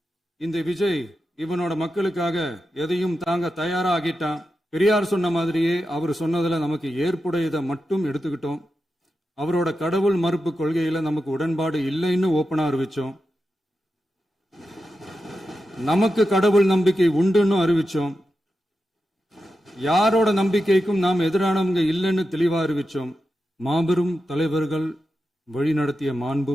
இந்த விஜய் இவனோட மக்களுக்காக எதையும் தாங்க தயாரா ஆகிட்டான். பெரியார் சொன்ன மாதிரியே அவர் சொன்னதுல நமக்கு ஏற்புடையதை மட்டும் எடுத்துக்கிட்டோம். அவரோட கடவுள் மறுப்பு கொள்கையில நமக்கு உடன்பாடு இல்லைன்னு ஓப்பனா அறிவிச்சோம். நமக்கு கடவுள் நம்பிக்கை உண்டுன்னு அறிவிச்சோம். யாரோட நம்பிக்கைக்கும் நாம் எதிரானவங்க இல்லைன்னு தெளிவா அறிவிச்சோம். மாபெரும் தலைவர்கள் வழிநடத்திய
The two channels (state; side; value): normal; both; correlation 0.90